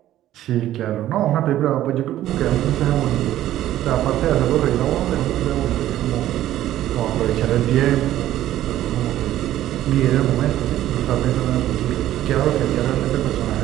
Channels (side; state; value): left; quieter; 13.3 dB